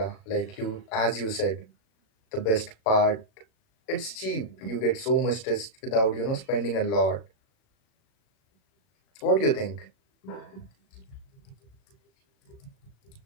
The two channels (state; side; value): late; right; 37 ms